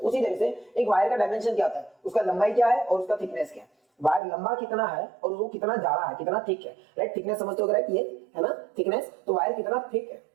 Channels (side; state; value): left; drops out; at 4.2 s